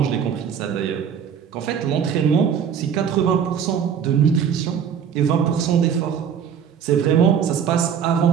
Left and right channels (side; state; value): left; quieter; 7.8 dB